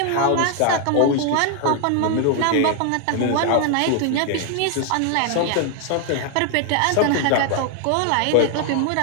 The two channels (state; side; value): different; both; correlation 0.00